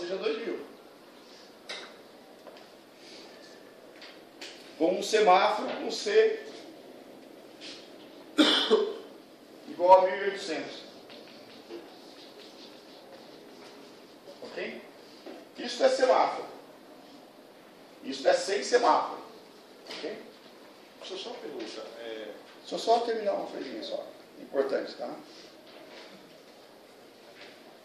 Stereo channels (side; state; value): both; identical; correlation 1.00